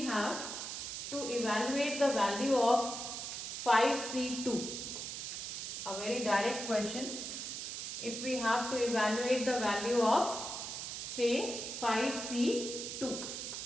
to evaluate the value of 5C2. A very direct question. If we have to evaluate the value of say 5C2,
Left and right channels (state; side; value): noise; right; hiss, 5 dB below the sound